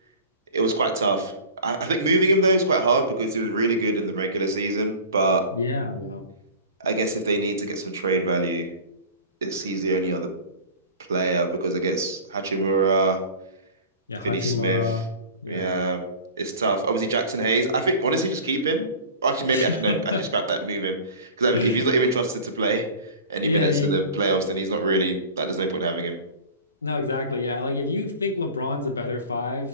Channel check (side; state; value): both; inverted; correlation -0.38